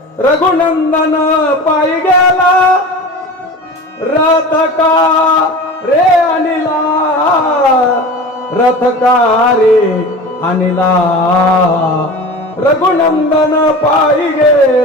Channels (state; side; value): normal; both; correlation 0.34